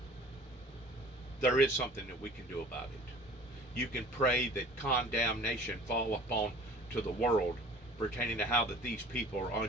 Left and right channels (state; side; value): normal; both; correlation 0.46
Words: There is something that we can do about it. You can pray that condemnation fall upon to the world pertaining to how that these people are